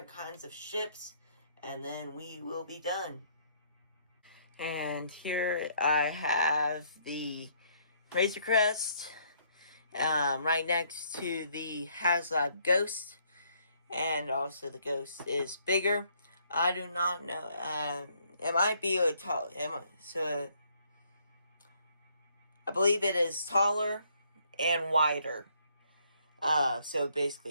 kinds of ships, and then we will be done. And here I have the Razor Crest right next to the HasLab Ghost, and also the Ghost is bigger. I do not know. It might be a tall. So I believe it is taller and wider. So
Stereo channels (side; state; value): both; inverted; correlation -0.67